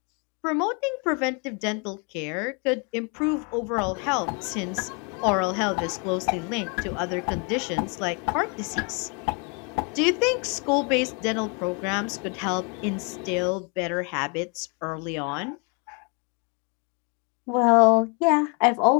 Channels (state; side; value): quieter; right; 34.5 dB